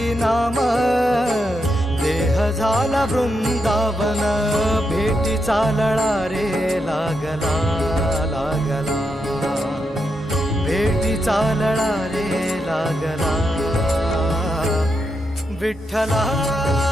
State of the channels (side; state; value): both; normal; correlation 0.83